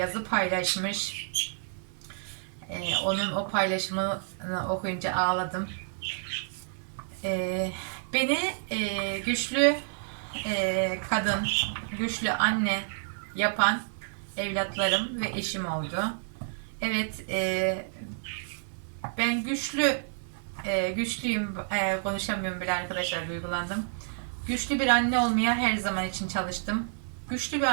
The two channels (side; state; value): left; silent; 57 dB below the other